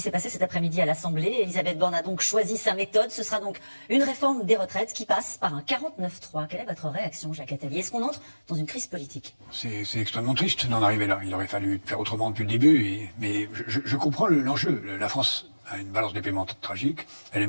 passé cet après-midi à l'Assemblée. Elisabeth Borne a donc choisi sa méthode. Ce sera donc une réforme des retraites qui passe par un 49-3. Quelle est votre réaction, Jacques Attali? Est-ce qu'on entre dans une crise politique? C'est extrêmement triste d'en arriver là. Il aurait fallu faire autrement depuis le début. Mais je comprends l'enjeu. La France a une balance des paiements tragique. Elle est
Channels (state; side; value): inverted; both; correlation -1.00